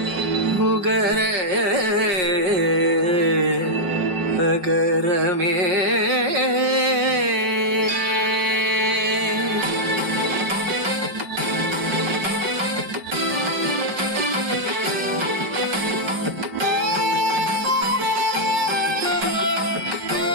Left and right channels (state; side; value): late; left; 5.5 ms